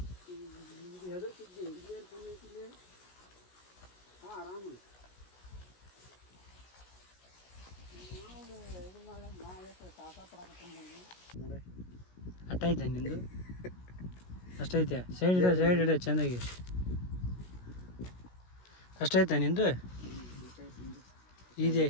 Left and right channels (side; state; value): right; late; 16 ms